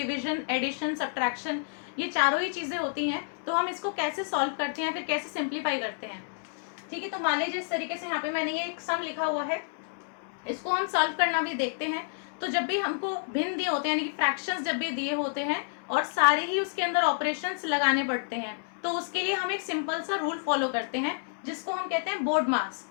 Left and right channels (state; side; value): silent; right; 58 dB below the other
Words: एडिशन, सब्ट्रैक्शन, ये चारों ही चीजें होती हैं, तो हम इसको कैसे सॉल्व करते हैं, फिर कैसे सिंप्लीफाई करते हैं। ठीक है, तो मान लीजिए इस तरीके से यहाँ पे मैंने ये एक सम लिखा हुआ है, इसको हम सॉल्व करना भी देखते हैं। तो जब भी हमको भिन्न दिए होते हैं, यानी कि फ्रैक्शंस जब भी दिए होते हैं और सारे ही उसके अंदर ऑपरेशंस लगाने पड़ते हैं, तो उसके लिए हम एक सिंपल सा रूल फॉलो करते हैं जिसको हम कहते हैं बोर्ड मार्क्स।